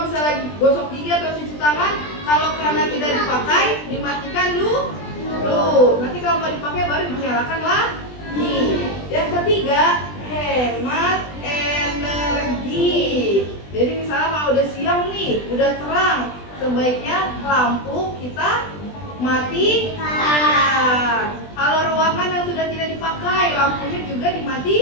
misalnya lagi gosok gigi atau cuci tangan, kalau kerannya tidak dipakai, dimatikan dulu. Nanti kalau mau dipakai baru dinyalakan lagi. Yang ketiga, hemat energi. Jadi misalnya kalau udah siang nih, udah terang, sebaiknya lampu kita matikan. Kalau ruangan yang sudah tidak dipakai, lampunya juga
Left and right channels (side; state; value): right; late; 20 ms